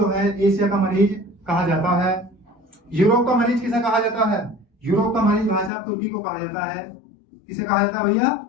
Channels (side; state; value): right; drops out; at 5.7 s